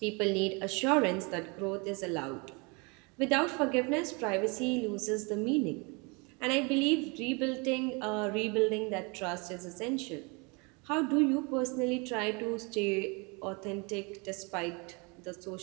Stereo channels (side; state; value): left; quieter; 30.5 dB